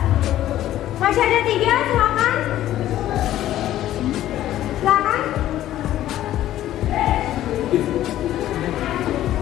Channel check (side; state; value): right; quieter; 13.2 dB